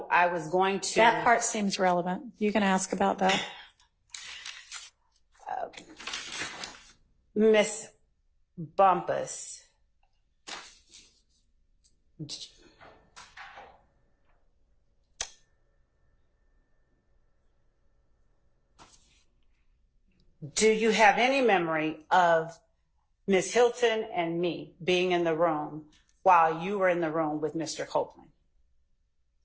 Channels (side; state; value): both; identical; correlation 1.00